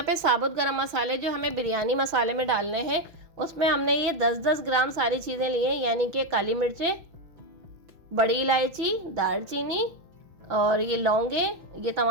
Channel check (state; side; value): late; left; 6.0 ms